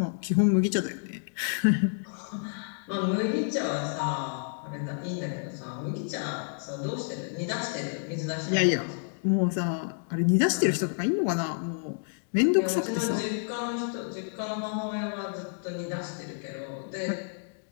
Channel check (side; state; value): right; silent; digital silence